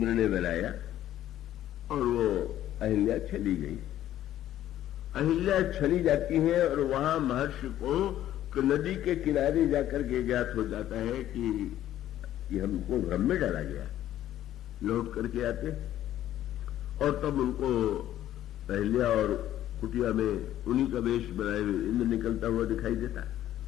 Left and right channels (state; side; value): quieter; right; 12.5 dB